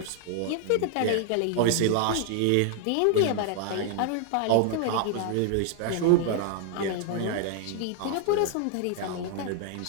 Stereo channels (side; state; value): both; different; correlation 0.00